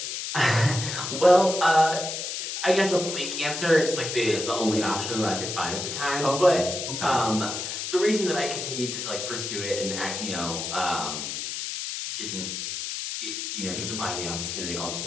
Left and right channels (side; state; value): left; noise; hiss, 5 dB below the sound